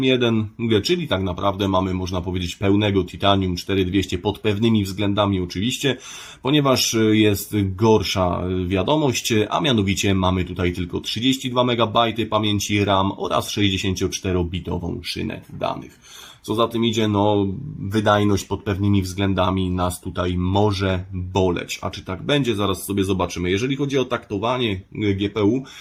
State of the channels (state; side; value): identical; both; correlation 1.00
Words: czyli tak naprawdę mamy, można powiedzieć, pełnego Titanium 4200 pod pewnymi względami oczywiście, ponieważ jest gorsza wiadomość, a mianowicie mamy tutaj tylko 32 MB pamięci RAM oraz 64-bitową szynę danych. Co za tym idzie, no wydajność pod pewnymi względami nas tutaj może boleć. A czy tak będzie, zaraz sobie zobaczymy. Jeżeli chodzi o taktowanie GPU,